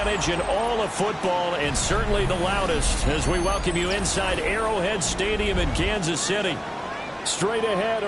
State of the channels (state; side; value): identical; both; correlation 1.00